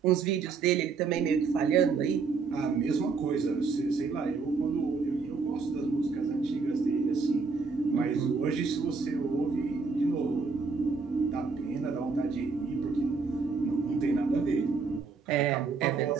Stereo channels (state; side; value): quieter; left; 4.8 dB